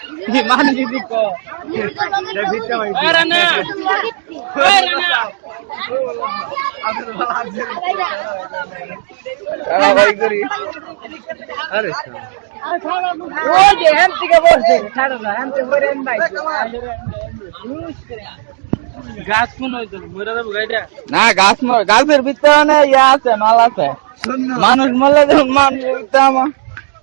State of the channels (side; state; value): left; silent; digital silence